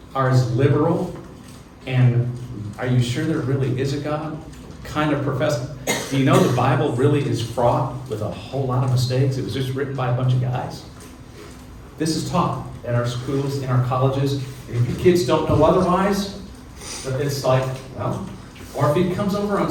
are as liberal and are you sure there really is a God kind of professor. Do you know the Bible really is fraught with a whole lot of mistakes? It was just written by a bunch of guys. This is taught at our schools, in our colleges. And if your kids don't know otherwise, it's like, well, or if it comes over on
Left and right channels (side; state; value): both; identical; correlation 1.00